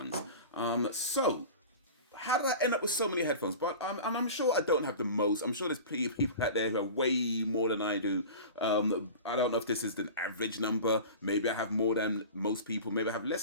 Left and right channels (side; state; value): both; inverted; correlation -0.35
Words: So how did I end up with so many headphones? But I'm sure I don't have the most. I'm sure there's plenty of people out there who have way more than I do. I don't know if this is the average number. Maybe I have more than most people. Maybe I have